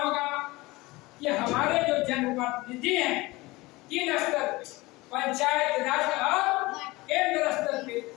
कि हमारे जो जनप्रतिनिधि हैं 3 स्तर पे, पंचायत राज और केंद्र स्तर पे,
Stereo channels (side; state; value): right; quieter; 21.4 dB